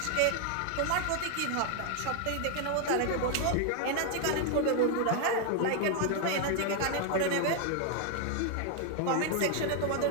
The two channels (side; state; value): both; different; correlation 0.00